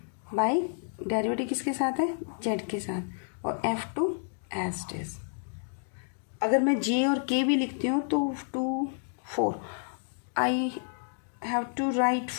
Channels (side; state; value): right; silent; digital silence